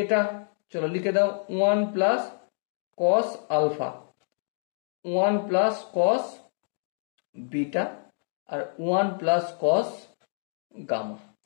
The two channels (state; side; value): silent; right; digital silence